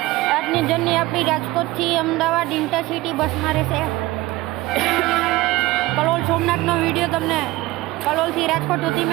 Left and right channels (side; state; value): left; quieter; 19.0 dB